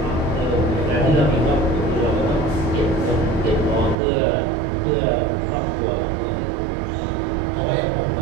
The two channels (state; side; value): drops out; left; at 4.0 s